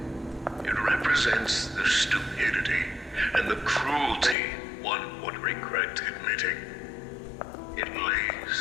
It represents the stupidity and the cruelty one would regret admitting. It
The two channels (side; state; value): right; drops out; at 4.4 s